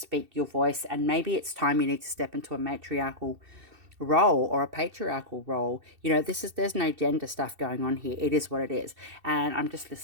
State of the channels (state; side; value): late; left; 2.7 ms